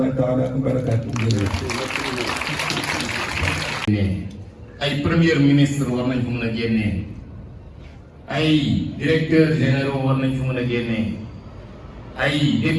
taala wa barakaatu. ay premier ministre war nañ ko mën a génnee ay directeurs généraux war nañ ko mën a génnee ay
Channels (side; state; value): both; identical; correlation 1.00